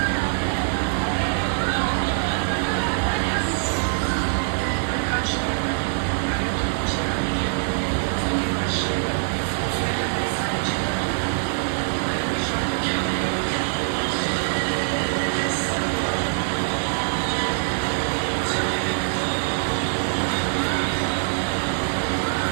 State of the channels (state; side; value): silent; left; digital silence